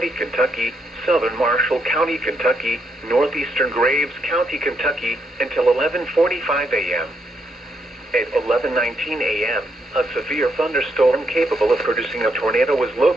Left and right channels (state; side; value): normal; both; correlation 0.77